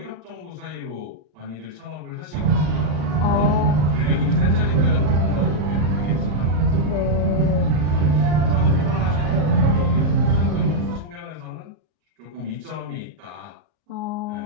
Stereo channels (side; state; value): left; late; 34 ms